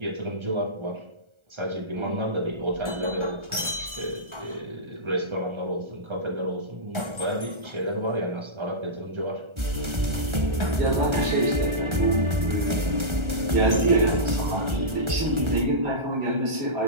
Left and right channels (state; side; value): late; left; 1.4 ms